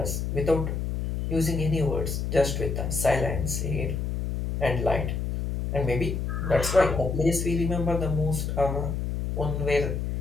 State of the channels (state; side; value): noise; left; hum, 2 dB below the sound